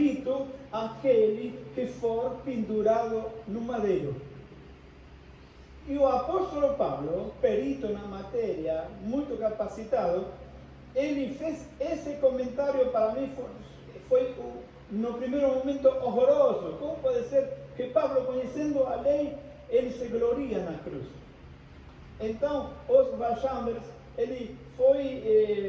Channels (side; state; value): both; identical; correlation 1.00